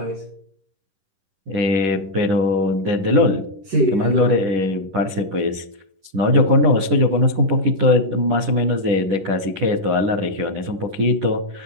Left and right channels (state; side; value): late; left; 10 ms